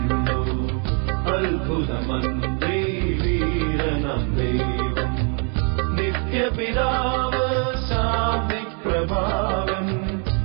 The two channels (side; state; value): left; quieter; 38.9 dB